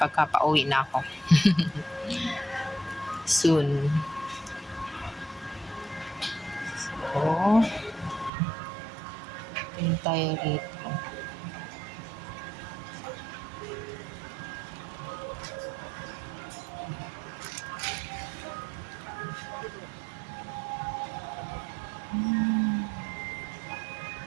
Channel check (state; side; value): drops out; left; at 8.3 s